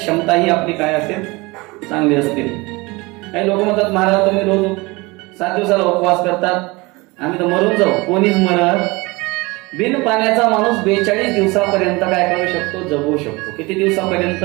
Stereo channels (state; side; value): quieter; left; 24.1 dB